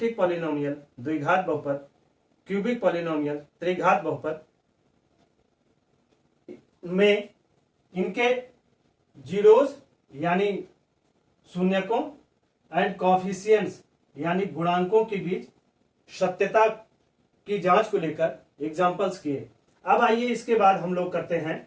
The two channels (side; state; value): both; identical; correlation 1.00